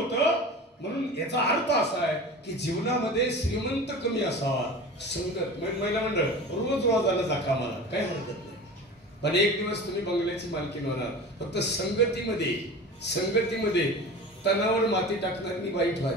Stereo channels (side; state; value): both; normal; correlation 0.35